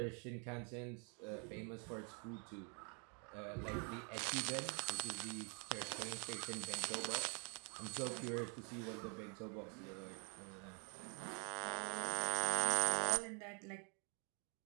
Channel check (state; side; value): quieter; left; 37.5 dB